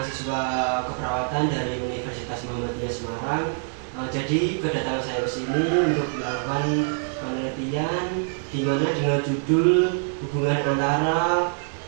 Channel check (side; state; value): left; silent; 62 dB below the other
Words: keperawatan dari Universitas Muhammadiyah Semarang. Jadi kedatangan saya ke sini untuk melakukan penelitian di mana dengan judul hubungan antara